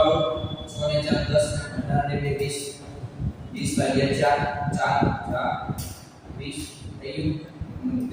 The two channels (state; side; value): identical; both; correlation 1.00